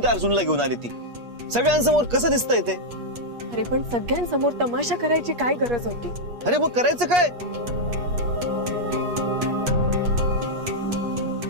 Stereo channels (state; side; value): late; left; 8.4 ms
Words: त्या अर्जुनला घेऊन आली ती. सगळ्यांसमोर कसं दिसतंय ते? अरे पण सगळ्यांसमोर तमाशा करायची काय गरज होती? अरे मग करायचं काय?